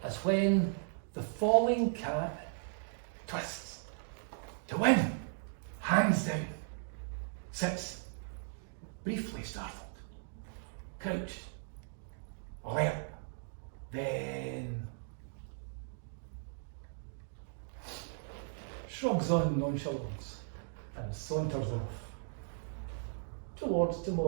As when the falling cat twists to win, hands down, sits, briefly startled, couched, alert, then shrugs on nonchalance and saunters off towards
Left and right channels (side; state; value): left; silent; digital silence